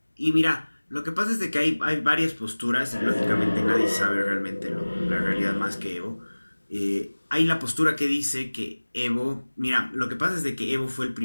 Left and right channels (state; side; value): inverted; both; correlation -1.00